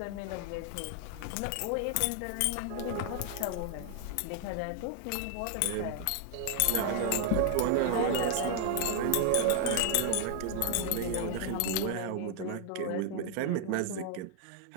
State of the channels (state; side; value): different; both; correlation 0.00